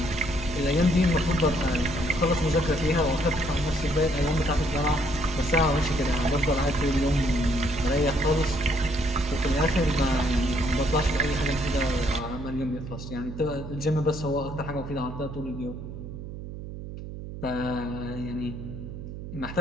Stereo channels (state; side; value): noise; right; hum, 10 dB below the sound